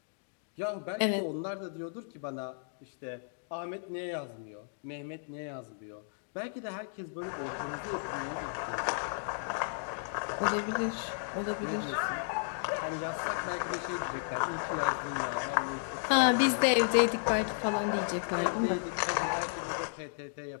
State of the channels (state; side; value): silent; right; digital silence